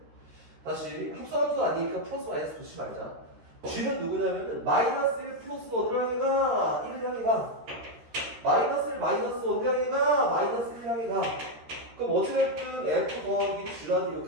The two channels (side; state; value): left; late; 13 ms